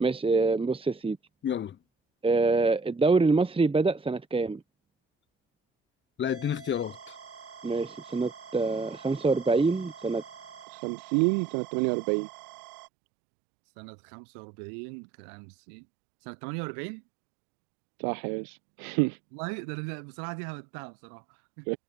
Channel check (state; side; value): drops out; left; at 10.7 s